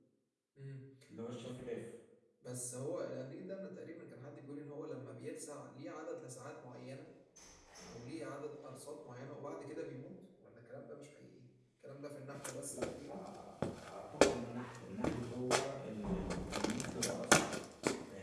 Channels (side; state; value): both; identical; correlation 1.00